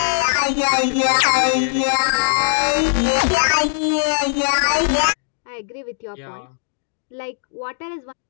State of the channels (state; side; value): silent; right; digital silence